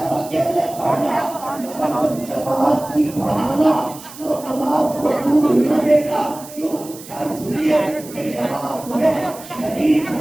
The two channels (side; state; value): right; noise; hiss, 17 dB below the sound